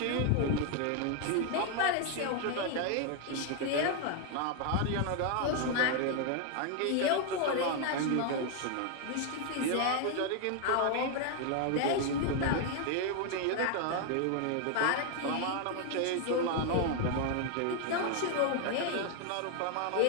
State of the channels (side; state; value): both; different; correlation 0.01